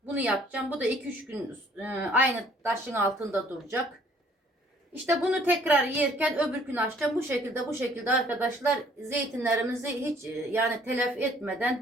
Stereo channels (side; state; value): both; normal; correlation 0.59